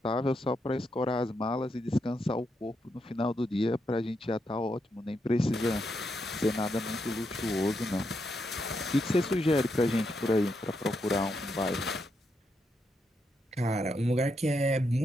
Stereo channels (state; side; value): normal; both; correlation 0.81